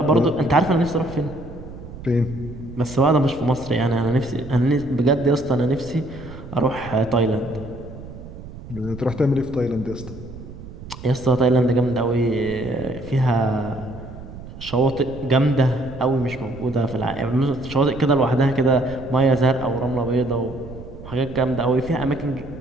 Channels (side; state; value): right; noise; rumble, 14 dB below the sound